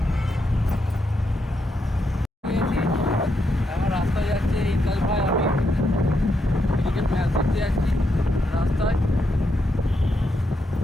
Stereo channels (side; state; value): both; normal; correlation 0.81